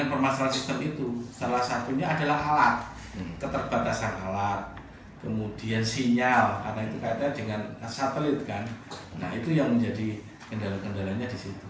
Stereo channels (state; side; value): identical; both; correlation 1.00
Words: permasalahan sistem itu. Salah satunya adalah alat, keterbatasan alat, kemudian sinyal, karena itu kaitannya dengan satelit kan. Nah itu yang menjadi kendala-kendalanya di situ.